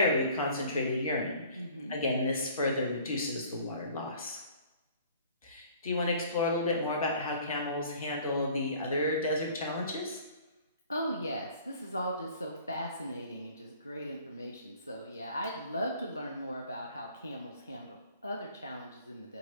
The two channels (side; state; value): both; inverted; correlation -0.51